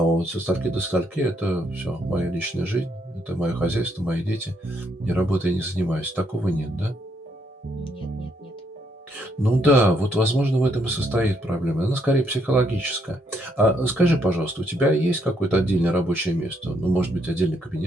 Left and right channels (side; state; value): both; normal; correlation 0.73